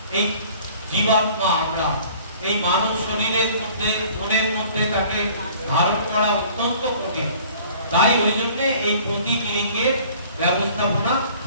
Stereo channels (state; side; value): inverted; both; correlation -0.51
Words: এই জীবাত্মা আমরা এই মানব শরীরের মধ্যে মনের মধ্যে তাকে ধারণ করা অত্যন্ত কঠিন। তাই ওই জন্য এই প্রতীক লিঙ্গের ব্যবস্থাপনা